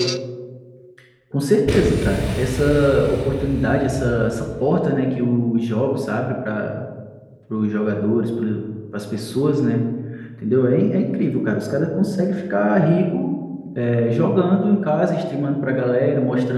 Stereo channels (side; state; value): both; identical; correlation 1.00